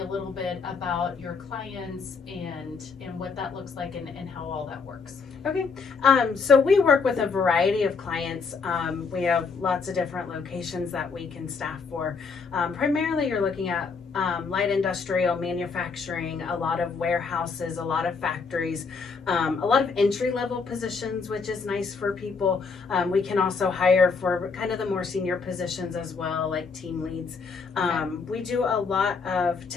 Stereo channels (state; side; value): quieter; right; 5.0 dB